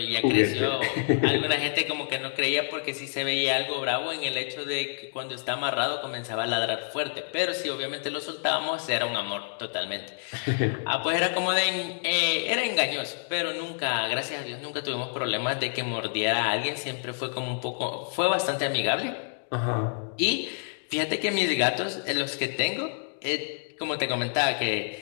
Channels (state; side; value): silent; right; digital silence